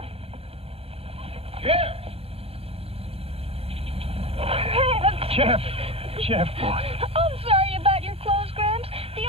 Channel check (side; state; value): left; late; 0.28 ms